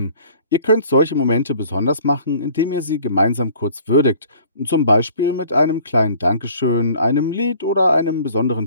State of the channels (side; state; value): both; inverted; correlation -0.51